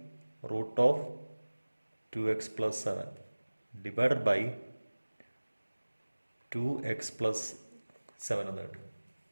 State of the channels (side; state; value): both; inverted; correlation -1.00